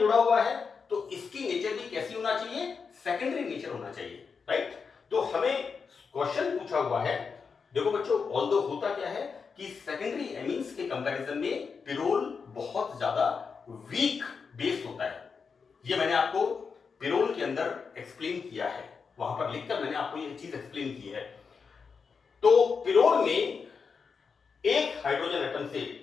हुआ है, तो इसकी नेचर भी कैसी होना चाहिए, सेकेंडरी नेचर होना चाहिए, राइट। तो हमें क्वेश्चन पूछा हुआ है, देखो बच्चों, ऑल्दो होता क्या है कि सेकेंडरी एमीन्स के कंपैरिजन में पिरोल बहुत ज्यादा वीक बेस होता है। ये मैंने आपको पिरोल के अंदर एक्सप्लेन किया है, वहां पर लिखकर मैंने आपको ये चीज एक्सप्लेन की है। तो पिरोल में एक हाइड्रोजन एटम से,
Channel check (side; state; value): right; quieter; 5.5 dB